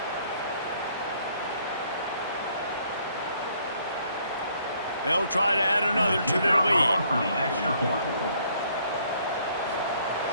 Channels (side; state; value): both; inverted; correlation -0.65